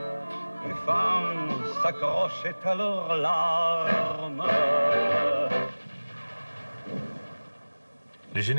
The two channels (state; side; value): inverted; both; correlation -1.00